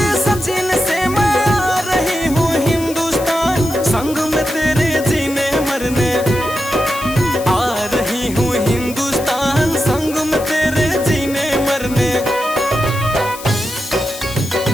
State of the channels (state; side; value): noise; left; hiss, 13 dB below the sound